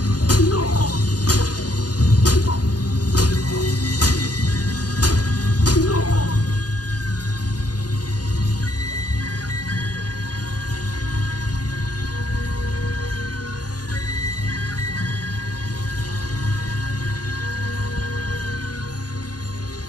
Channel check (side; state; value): right; late; 0.69 ms